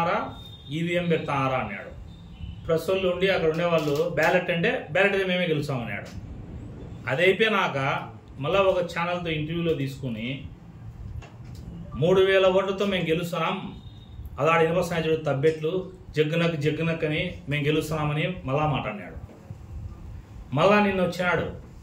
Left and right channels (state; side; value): identical; both; correlation 1.00